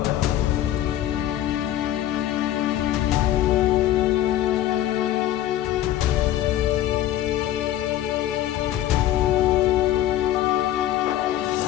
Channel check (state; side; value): quieter; right; 12.9 dB